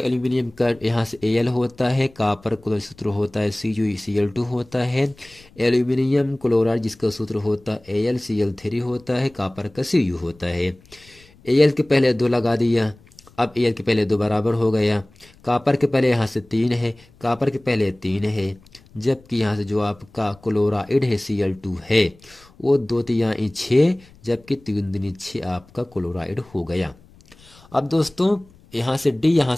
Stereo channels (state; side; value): noise; left; rumble, 27 dB below the sound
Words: एल्यूमिनियम का यहाँ से Al होता है, कॉपर का सूत्र होता है CuCl2 होता है, एल्यूमिनियम क्लोराइड जिसका सूत्र होता है AlCl3 होता है, कॉपर का Cu होता है। Al के पहले 2 लगा दिया, अब Al के पहले 2 बराबर हो गया, कॉपर के पहले यहाँ से 3 है, कॉपर के पहले 3 है, जबकि यहाँ से जो आपका क्लोराइड है Cl2 है वो 2 तिहाई 6, जबकि 3 दूनी 6 आपका क्लोराइड हो गया। अब दोस्तों यहाँ से डी यहाँ